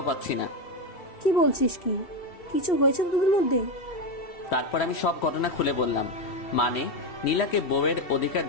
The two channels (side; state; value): right; late; 3.1 ms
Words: পাচ্ছি না। কি বলছিস? কি কিছু হয়েছে তোদের মধ্যে? তারপর আমি সব ঘটনা খুলে বললাম। মানে নীলাকে বউয়ের অধিকার